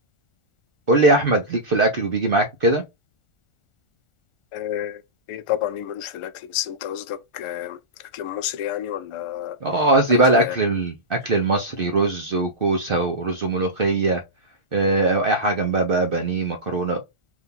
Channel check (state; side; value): late; right; 1.4 ms